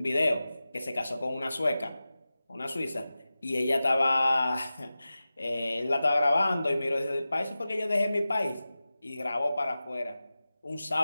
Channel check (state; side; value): inverted; both; correlation -0.95